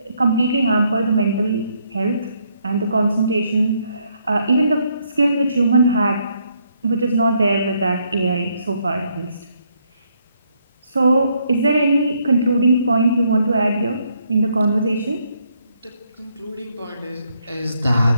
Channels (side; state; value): both; inverted; correlation -0.73